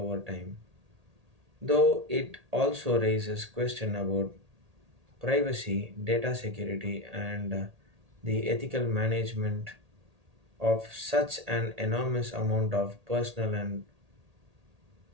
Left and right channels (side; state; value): left; late; 1.8 ms